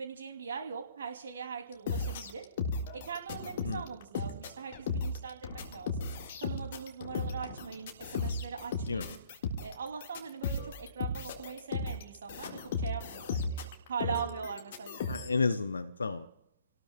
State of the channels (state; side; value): inverted; both; correlation -0.60